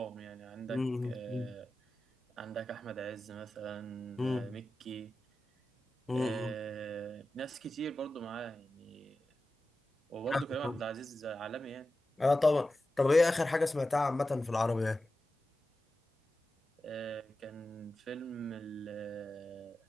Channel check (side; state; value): both; normal; correlation 0.93